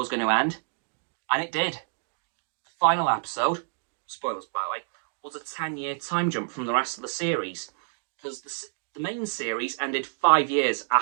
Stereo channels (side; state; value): left; silent; digital silence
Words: going to end. And it did. The final episode, spoilers by the way, was a 10-year time jump from the rest of the series. Because the main series ended 5 years